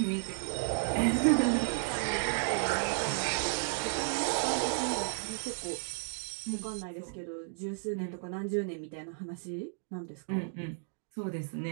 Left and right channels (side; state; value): left; silent; digital silence